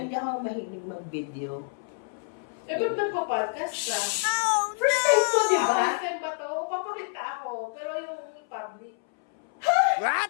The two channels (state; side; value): silent; right; 60 dB below the other